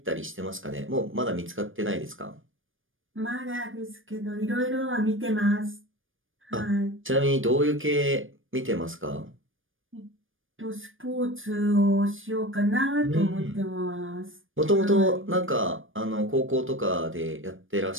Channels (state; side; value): late; left; 0.58 ms